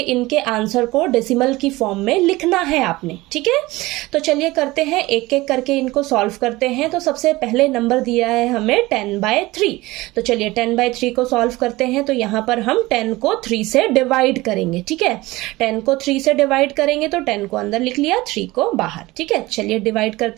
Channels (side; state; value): left; quieter; 19.9 dB